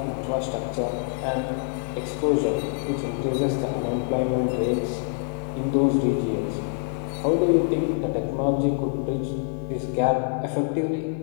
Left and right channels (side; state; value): right; silent; 61 dB below the other